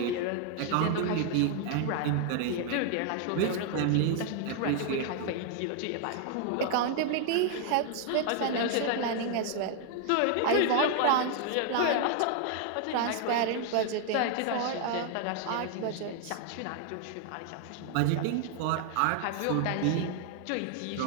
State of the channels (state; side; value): different; both; correlation 0.00